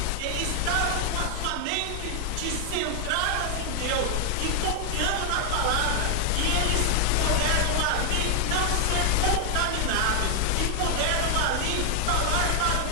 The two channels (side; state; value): both; different; correlation 0.00